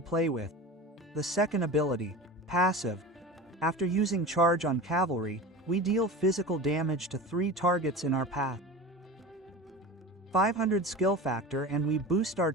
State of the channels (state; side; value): normal; both; correlation 0.31